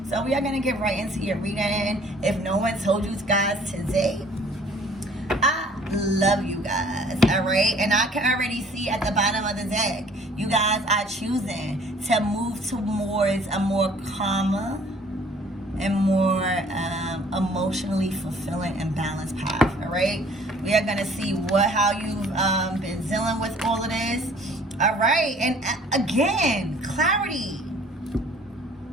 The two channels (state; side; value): normal; both; correlation 0.56